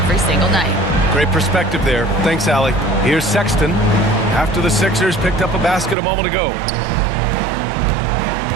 single night. Great perspective there. Thanks, Allie. Here's Sexton after the Sixers picked up a basket a moment ago.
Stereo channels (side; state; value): left; drops out; at 6.0 s